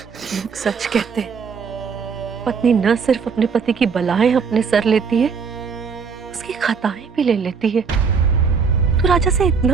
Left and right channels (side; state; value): left; quieter; 5.7 dB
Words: लोग सच कहते हैं, पत्नी न सिर्फ अपने पति की बलाएं अपने सर लेती है, उसकी खताएं भी ले लेती है। तू राजा से